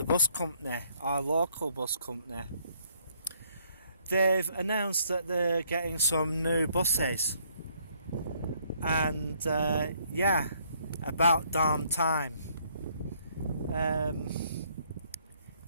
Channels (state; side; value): inverted; both; correlation -0.67